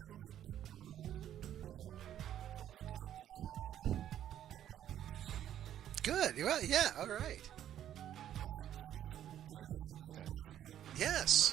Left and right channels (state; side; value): quieter; left; 11.0 dB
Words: upper, towards the top 5 of Bond films for sure. Good. Well, yeah. All right. All right, so I guess there you have it. That's Skyfall.